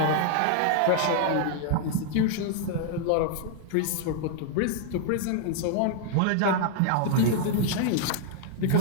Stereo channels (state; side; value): different; both; correlation 0.00